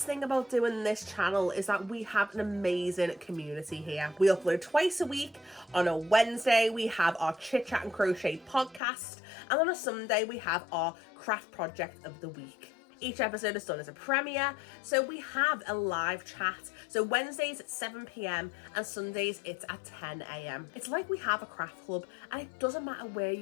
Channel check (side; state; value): right; drops out; at 8.8 s